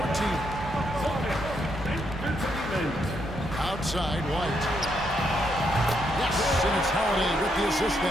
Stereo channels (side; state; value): both; normal; correlation 0.77